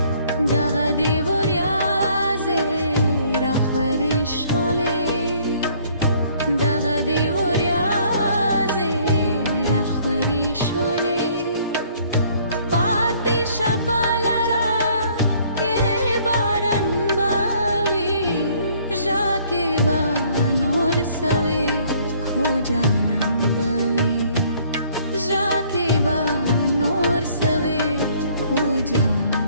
दगा देवरियाजे रखवरे शले दगा देवरियाजे रखवरे शले पाते शपालरा के बारन बावे जाके बानोर सवे खो जानन बवे जाके बानोर सवे खो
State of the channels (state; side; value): inverted; both; correlation -0.60